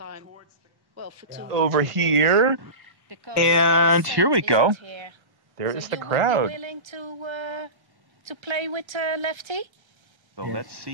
over here. And here we go. There is the crowd. Willing to play with Lefty? So let's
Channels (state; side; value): late; left; 1.1 ms